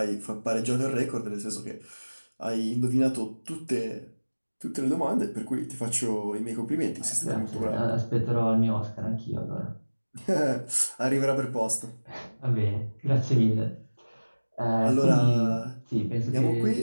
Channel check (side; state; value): both; inverted; correlation -1.00